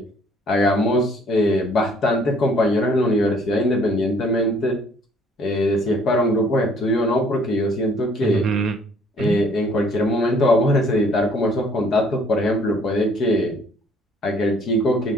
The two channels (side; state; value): both; normal; correlation 0.60